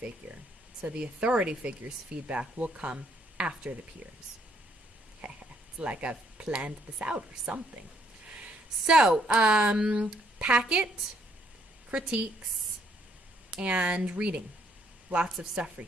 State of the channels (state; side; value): normal; both; correlation 0.69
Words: So the authority figure's feedback will come after the peers. It's like I've planned this out or something. So, packet, critiques, and reading. Lots of stuff for